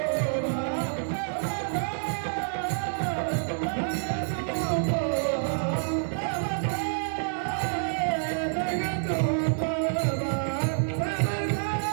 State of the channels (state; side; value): silent; left; 59 dB below the other